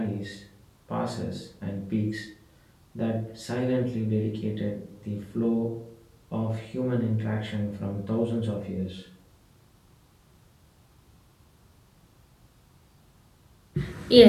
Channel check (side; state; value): both; identical; correlation 1.00